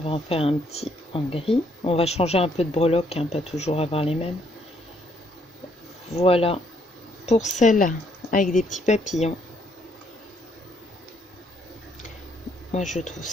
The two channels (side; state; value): both; normal; correlation 0.69